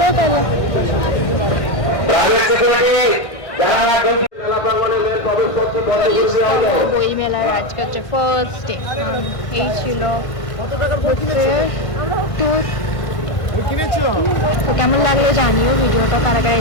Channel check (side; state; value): right; late; 1.5 ms